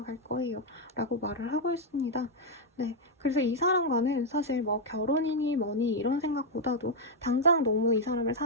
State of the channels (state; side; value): normal; both; correlation -0.01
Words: 거예요. 라고 말을 하고 있습니다. 네, 그래서 이 사람과는 사실 뭐 결혼이니 뭐니 이런 생각보다도 당장 너무 이 사람을